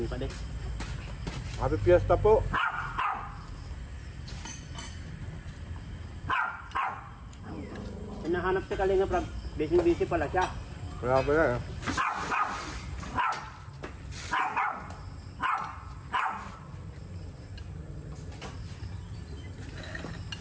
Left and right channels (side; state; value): both; identical; correlation 1.00